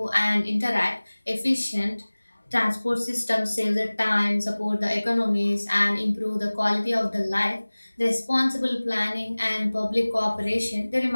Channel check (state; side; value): inverted; both; correlation -1.00